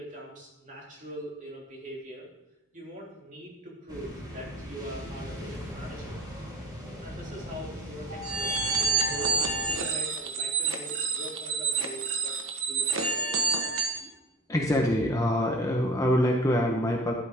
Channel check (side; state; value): both; normal; correlation 0.43